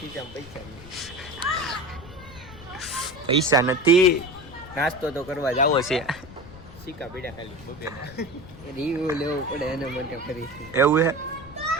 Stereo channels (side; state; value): left; noise; rumble, 18 dB below the sound